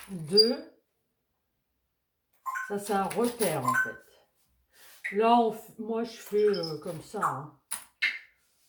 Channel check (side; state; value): both; identical; correlation 1.00